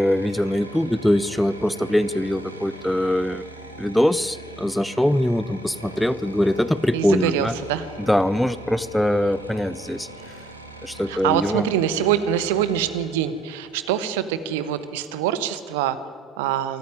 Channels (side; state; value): both; normal; correlation 0.71